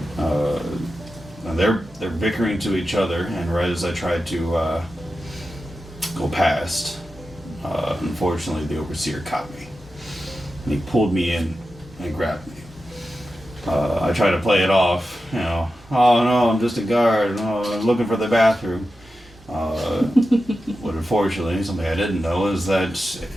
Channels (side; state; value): both; normal; correlation 0.92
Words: And they're bickering to each other, and right as I tried to go past, unfortunately the overseer caught me. And he pulled me in and grabbed me. I tried to play it off, oh no, I'm just a guard, I'm looking for the bathroom. But unfortunately, something I didn't know is that